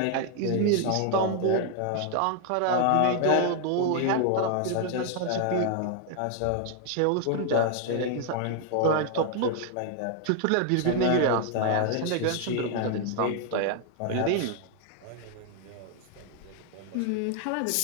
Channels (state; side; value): different; both; correlation 0.00